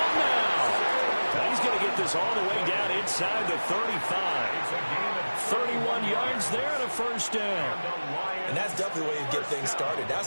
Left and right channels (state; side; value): inverted; both; correlation -1.00